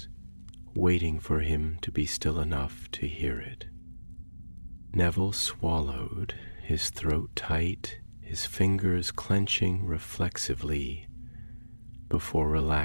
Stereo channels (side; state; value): both; inverted; correlation -1.00